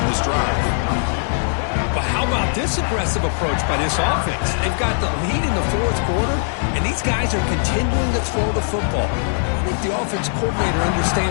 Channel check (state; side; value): silent; right; digital silence